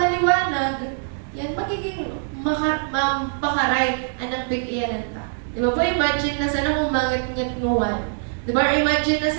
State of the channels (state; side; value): silent; left; digital silence